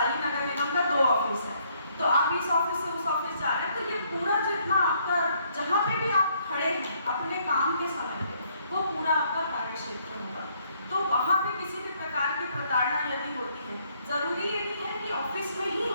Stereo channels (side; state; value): both; inverted; correlation -0.68